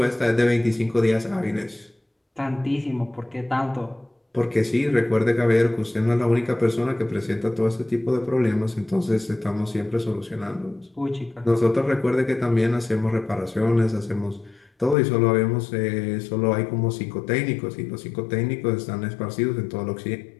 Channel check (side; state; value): right; drops out; at 15.0 s